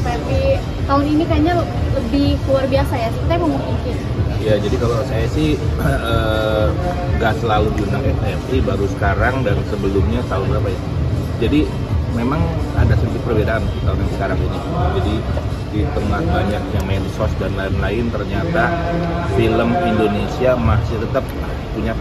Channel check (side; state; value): both; identical; correlation 1.00